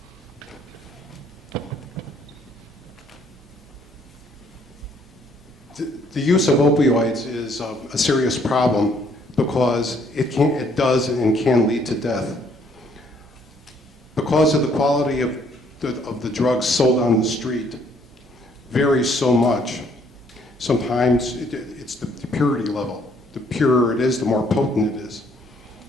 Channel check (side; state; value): both; normal; correlation 0.65